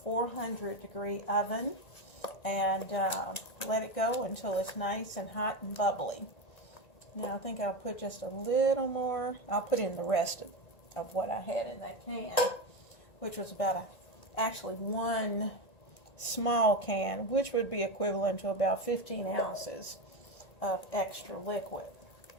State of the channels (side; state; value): right; late; 1.9 ms